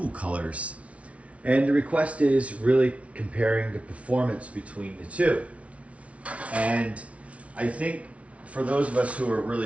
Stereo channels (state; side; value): late; left; 0.064 ms